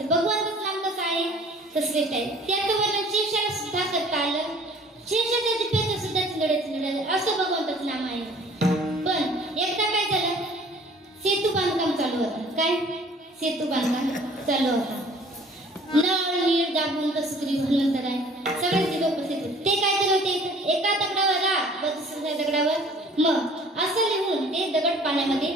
श्रेष्ठ आहे. त्याचं वर्णन शेषाला सुद्धा करता आलं. शेषाच्या जिभेचं सुद्धा चिंदडे असं भगवंताचं नाम आहे. पण एकदा काय झालं, सेतू बांधकाम चालू होतं. काय सेतू बांधकाम चालू होता. नळ नीळ दाबून कसुरी भगवंतर आहे, सगळ्यांची लोक उपस्थित होते. ते काय करत होते, एका दगडावर राग व दुसऱ्या दगडावर मग असं लिहून ते दगड पाण्यामध्ये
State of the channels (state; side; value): normal; both; correlation 0.52